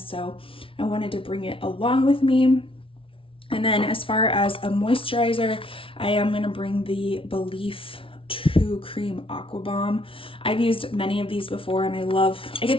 so I wanted to bring it along with me. And then as far as a moisturizer, I am going to bring the Belief True Cream Aqua Bomb. I've used many of these before, and I get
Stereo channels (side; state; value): right; late; 0.26 ms